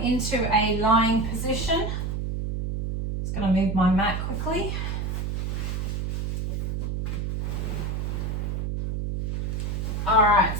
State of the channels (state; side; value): noise; right; hum, 2 dB below the sound